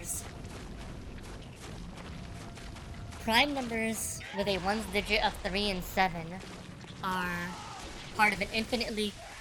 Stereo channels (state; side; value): identical; both; correlation 1.00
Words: with a ones digit of 3 and 7 are part of an infinitely